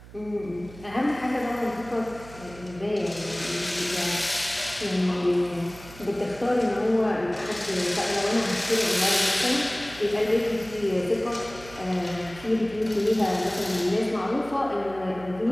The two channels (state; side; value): noise; right; hum, 18 dB below the sound